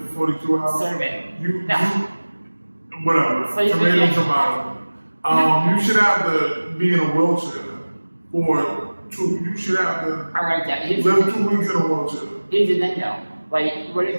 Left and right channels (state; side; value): inverted; both; correlation -1.00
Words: for 42 hours, Serve it. you whatever, Slave tomato, again. tomato. You should have to be in a wheelchair for you should have to I like that. live 2 weeks in a wheelchair. Here's the thing though. Like, what